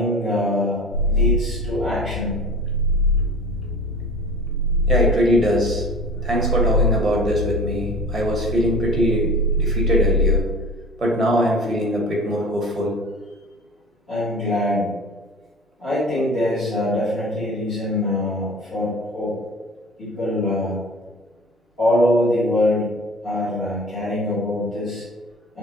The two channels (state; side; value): normal; both; correlation 0.40